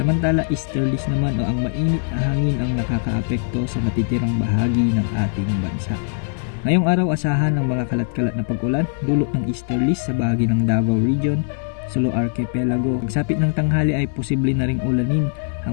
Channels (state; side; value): silent; right; digital silence